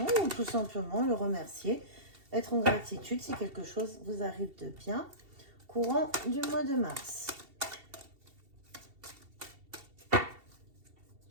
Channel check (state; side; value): late; left; 2.7 ms